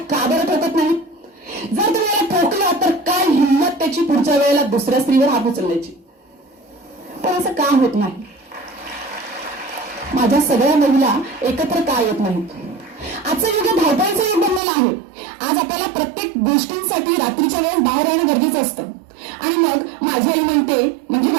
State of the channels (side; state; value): left; drops out; at 14.6 s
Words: का बरं ठोकत नाही? जर तुम्ही याला ठोकलं तर काय हिंमत त्याची पुढच्या वेळेला दुसऱ्या स्त्रीवर हात उचलण्याची? पण असं का होत नाही? माझ्या सगळ्या महिला एकत्र का येत नाहीत? आजचं युग धावपळीचं युग बनलेलं आहे. आज आपल्याला प्रत्येक गोष्टींसाठी रात्रीच्या वेळेस बाहेर राहणं गरजेचं असतं. आणि मग माझी आई म्हणते, म्हणजे